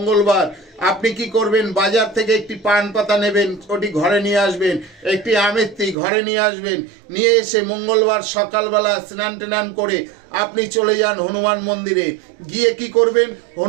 আপনি কি করবেন? বাজার থেকে একটি পান পাতা নেবেন, ওটি ঘরে নিয়ে আসবেন। একটি আমেত্তি ঘরে নিয়ে আসবেন। নিয়ে এসে মঙ্গলবার সকালবেলা স্নান টান করে আপনি চলে যান হনুমান মন্দিরে। গিয়ে কি করবেন?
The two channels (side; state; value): left; drops out; at 6.0 s